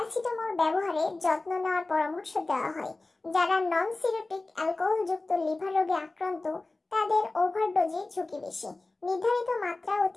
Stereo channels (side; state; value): right; quieter; 3.2 dB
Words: ব্যবহারে যত্ন নেওয়ার পরামর্শ দেওয়া হয়। যারা নন সিরোটিক অ্যালকোহলযুক্ত লিভার রোগে আক্রান্ত, তাদের ওভারডোজের ঝুঁকি বেশি। নির্ধারিত মাত্রা